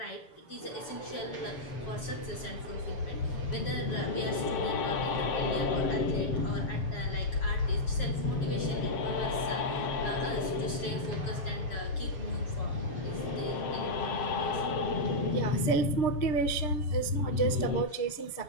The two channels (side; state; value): right; late; 7.1 ms